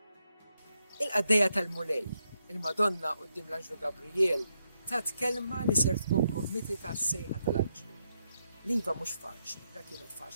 Il-qaddejja tal-mulej, il-Madonna quddiem l-Anġlu Gabriel, tat kelma li ser tkun kommiti tas-sejħa tal-Anġlu. Liva mhux faċli, dak kienet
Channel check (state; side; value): inverted; both; correlation -0.82